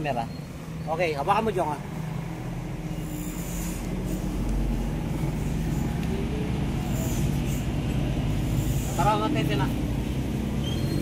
Okay, hawakan mo Jong. Tara nga Teddy na.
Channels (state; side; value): identical; both; correlation 1.00